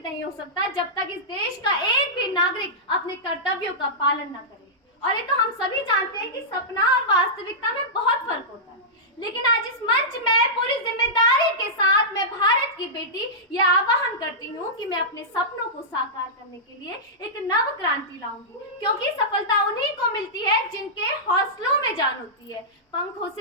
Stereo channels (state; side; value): normal; both; correlation -0.13